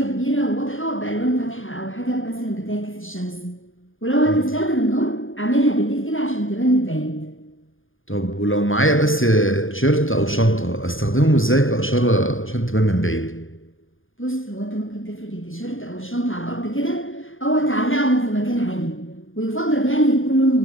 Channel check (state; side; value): late; right; 0.59 ms